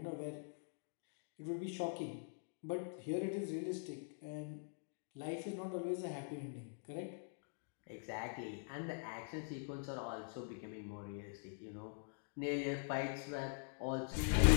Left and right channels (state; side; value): silent; right; digital silence